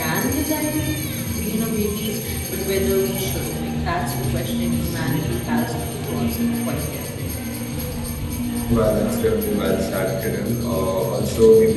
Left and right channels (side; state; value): both; identical; correlation 1.00